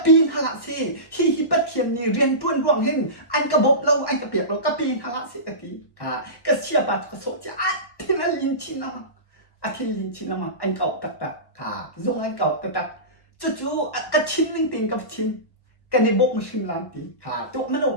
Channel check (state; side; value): late; right; 1.1 ms